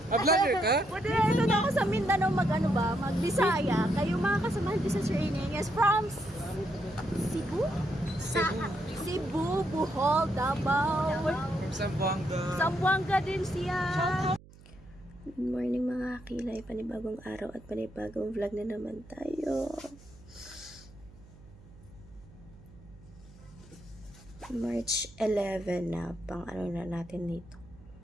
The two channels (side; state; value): right; noise; hum, 22 dB below the sound